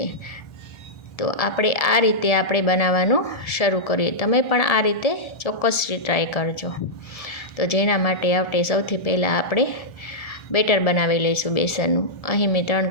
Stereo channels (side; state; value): right; late; 1.7 ms